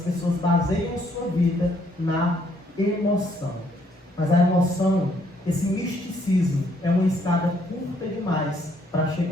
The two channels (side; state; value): both; normal; correlation 0.68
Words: pessoas baseiam sua vida na emoção. Mas a emoção, esse misticismo, é uma escada curta demais para